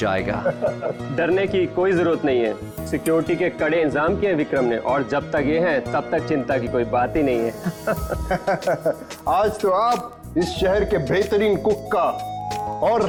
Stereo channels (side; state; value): both; identical; correlation 1.00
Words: डरने की कोई जरूरत नहीं है। सिक्योरिटी के कड़े इंतजाम किए विक्रम ने, और जब तक ये हैं तब तक चिंता की कोई बात ही नहीं है। आज तो आप इस शहर के बेहतरीन कुक का और